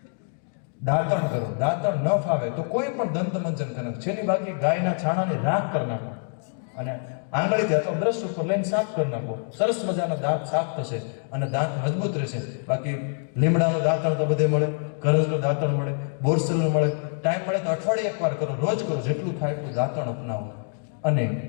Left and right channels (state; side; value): silent; right; 61 dB below the other